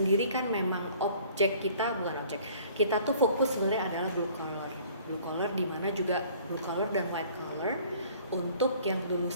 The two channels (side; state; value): both; inverted; correlation -0.53